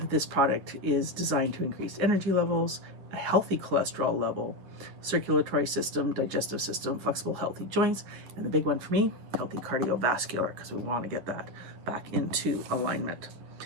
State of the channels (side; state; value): left; late; 10 ms